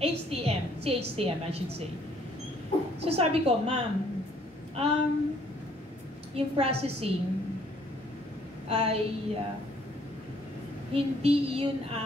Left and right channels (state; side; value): normal; both; correlation 0.63